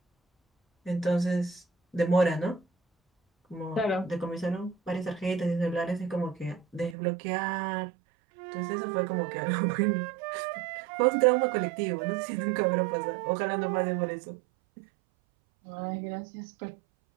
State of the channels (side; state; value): left; drops out; at 7.0 s